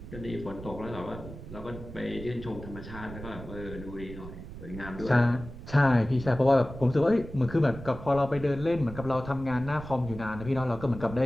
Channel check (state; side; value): noise; right; rumble, 12 dB below the sound